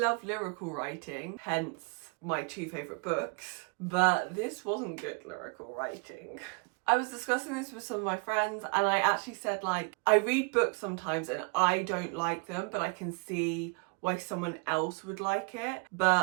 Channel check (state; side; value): quieter; left; 33.7 dB